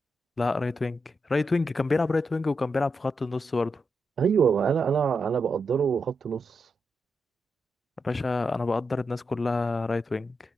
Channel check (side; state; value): both; normal; correlation 0.85